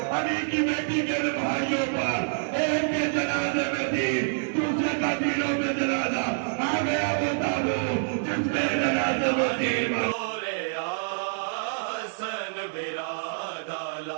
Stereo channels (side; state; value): left; silent; digital silence